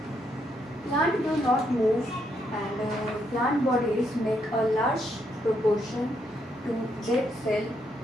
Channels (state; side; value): normal; both; correlation 0.76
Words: Plant do not move, and plant bodies make a large proportion to dead cell